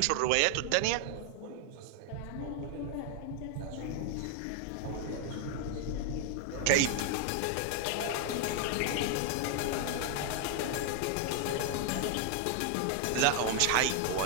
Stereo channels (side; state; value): both; different; correlation 0.00